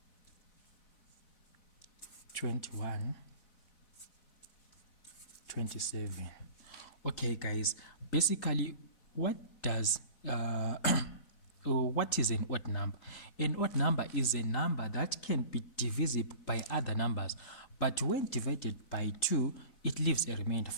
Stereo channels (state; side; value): late; right; 4.0 ms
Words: 21, 27. Okay, guys, basically, what is an odd number? An odd number is a number that can be divisible by other numbers, but when divided by 2, it leaves a remainder.